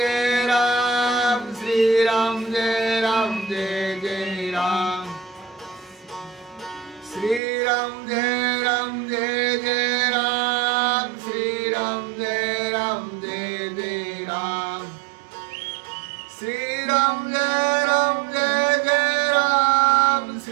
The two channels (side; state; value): left; drops out; at 7.4 s